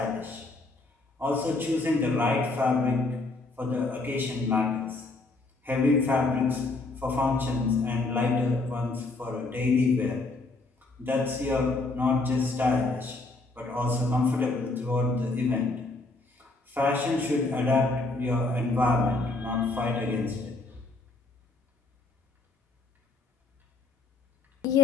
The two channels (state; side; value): quieter; right; 3.2 dB